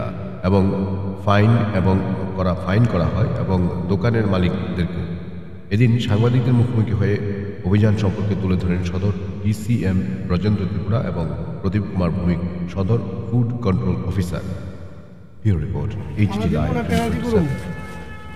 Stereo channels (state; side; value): identical; both; correlation 1.00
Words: এবং ফাইন করা হয় এবং দোকানের মালিকদেরকে। এদিন সাংবাদিকদের মুখোমুখি হয়ে অভিযান সম্পর্কে তুলে ধরেন সদর ডিসিএম ব্রজেন্দ্র ত্রিপুরা এবং প্রদীপ কুমার ভৌমিক, সদর food control officer. Bureau report, HD live.